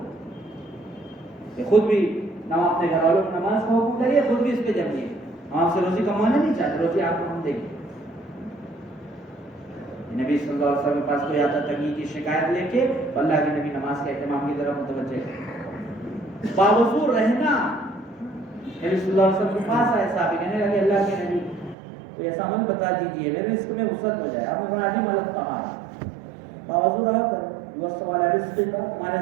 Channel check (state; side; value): drops out; left; at 21.8 s